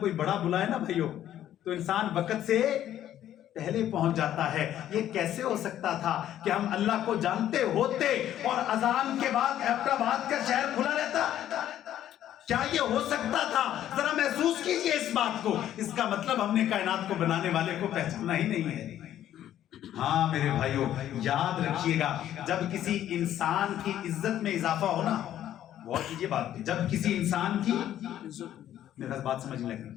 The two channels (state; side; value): quieter; right; 11.6 dB